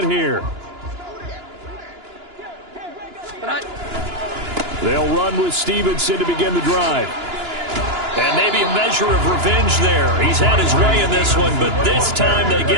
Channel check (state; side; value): late; left; 2.9 ms